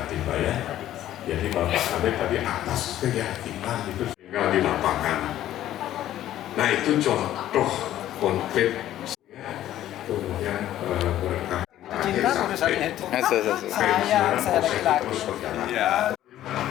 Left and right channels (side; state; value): right; quieter; 12.8 dB